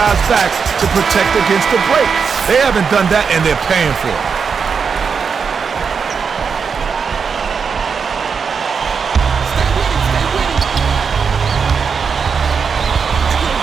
back to protect against the break. They haven't done that, and they're paying for it.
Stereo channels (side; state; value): left; quieter; 6.0 dB